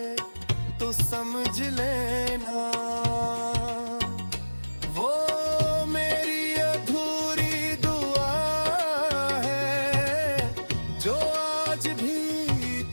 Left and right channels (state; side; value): inverted; both; correlation -1.00